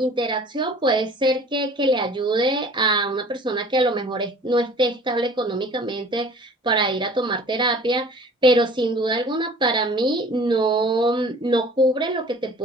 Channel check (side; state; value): both; normal; correlation 0.48